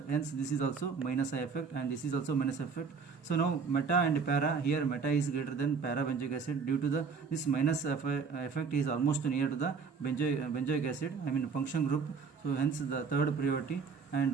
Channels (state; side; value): quieter; left; 5.4 dB